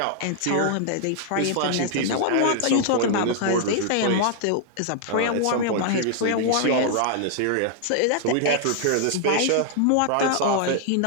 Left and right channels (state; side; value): different; both; correlation -0.01